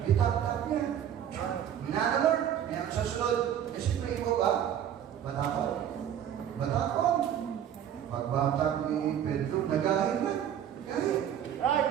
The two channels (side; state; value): left; quieter; 9.9 dB